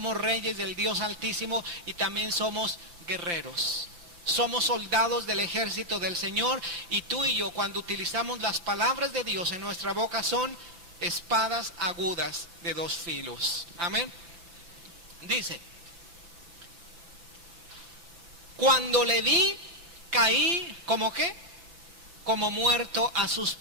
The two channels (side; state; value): left; late; 6.0 ms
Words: reyes del Dios Altísimo y también somos guerreros. Somos soldados del ejército del Señor, y tú y yo, cuando utilizamos las palabras de Dios en nuestra boca, son espadas agudas de 2 filos. Amén. Dice, cuando le vi, caí, ¿como qué? Como muerto a sus